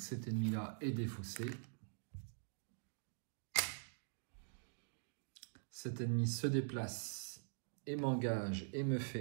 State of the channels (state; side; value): silent; left; digital silence